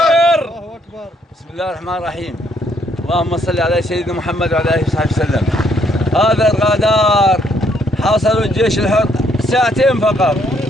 بسم الله الرحمن الرحيم. اللهم صل على سيدنا محمد وعلى آله وصحبه وسلم. هذا الرادار حاصروا الجيش الحر ساعتين فقط،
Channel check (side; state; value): both; normal; correlation 0.69